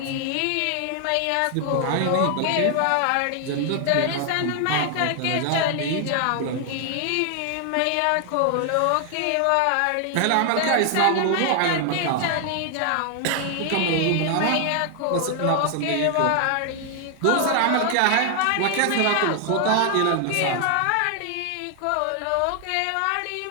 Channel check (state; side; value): different; both; correlation 0.00